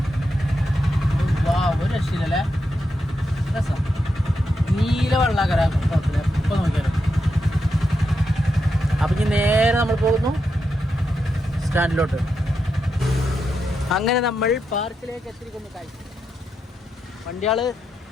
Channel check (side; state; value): both; normal; correlation 0.85